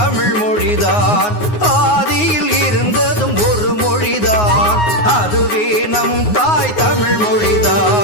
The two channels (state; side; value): late; right; 9.6 ms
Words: மொழிதான் ஆதியில் இருந்ததும் ஒரு மொழிதான் அதுவே நம் தாய் தமிழ்